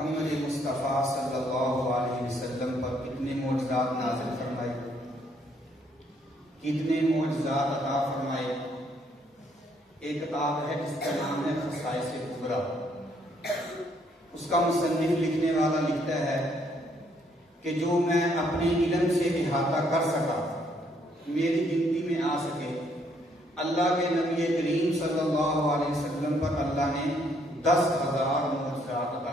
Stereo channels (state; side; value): normal; both; correlation 0.69